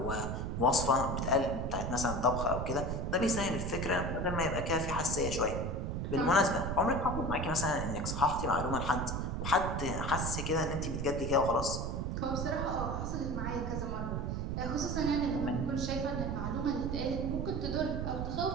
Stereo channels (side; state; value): right; noise; rumble, 2 dB below the sound